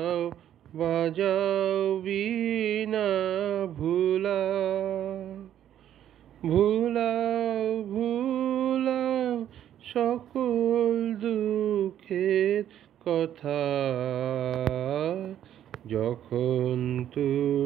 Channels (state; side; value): quieter; left; 10.8 dB